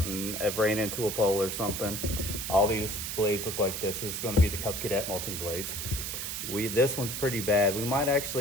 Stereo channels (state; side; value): noise; right; hiss, 4 dB below the sound